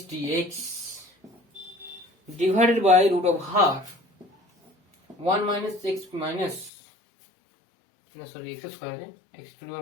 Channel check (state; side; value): drops out; right; at 6.7 s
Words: dx divided by root of r 1 minus x minus sorry x square আছে, x to the